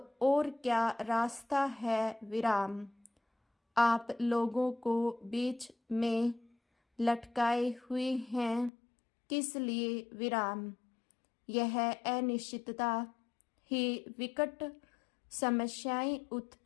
और क्या रास्ता है विराम। आप लोगों को बीच में लटकाए हुए हैं किस लिए विराम। यह अनिश्चितता ही विकट समस्याएं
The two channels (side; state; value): right; drops out; at 8.7 s